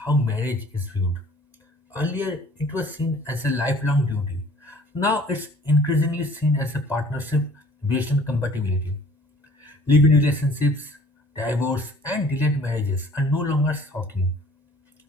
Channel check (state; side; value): normal; both; correlation 0.53